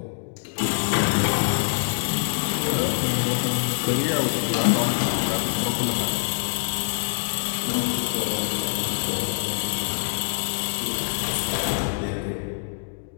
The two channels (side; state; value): right; silent; digital silence